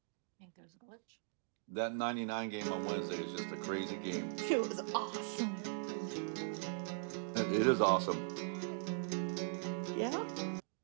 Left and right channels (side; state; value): left; silent; digital silence